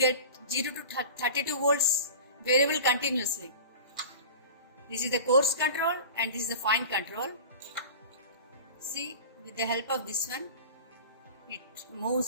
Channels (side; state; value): both; inverted; correlation -0.35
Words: 0 to 32 volts variable continuously. This is the coarse control and this is the fine control. See, with the help of this one, it